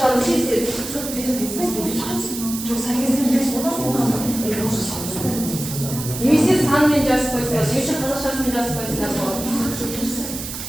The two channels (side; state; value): right; noise; hiss, 8 dB below the sound